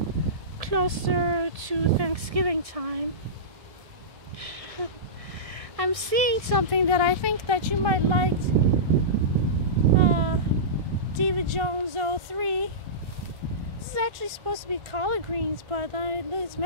closer to Thanksgiving time. I'm seeing something that I think that you might like. Diva Jones 03. This is actually supposed to be collard greens, but it's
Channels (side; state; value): left; late; 1.7 ms